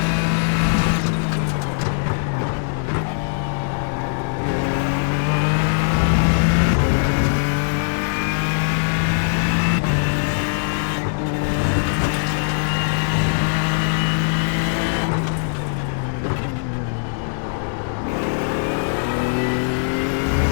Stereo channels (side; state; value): right; silent; digital silence